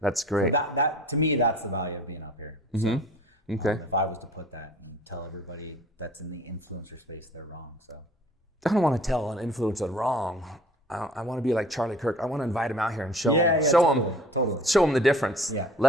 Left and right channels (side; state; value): both; normal; correlation 0.48